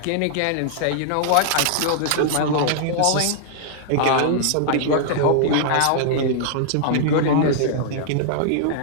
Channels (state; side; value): different; both; correlation -0.01